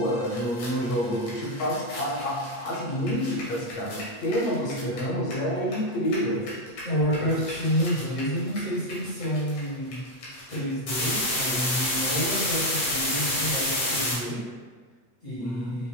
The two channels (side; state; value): right; late; 8.3 ms